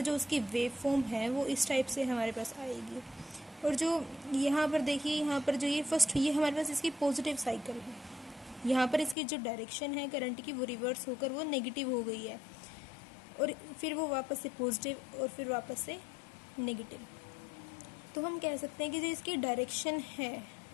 जो उसकी वेव फॉर्म है वो इस टाइप से हमारे पास आएगी। और जो यहाँ पर देखिए, यहाँ पर जो ये हमारे पास इसकी पॉजिटिव साइकिल है। यहाँ पर इसकी जो डायरेक्शन है करंट की वो रिवर्स होकर वो नेगेटिव हो गई है, और फिर वो वापस से पॉजिटिव और फिर वापस से नेगेटिव। तो हम कह सकते हैं कि जो इसकी डायरेक्शन है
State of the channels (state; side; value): drops out; right; at 9.2 s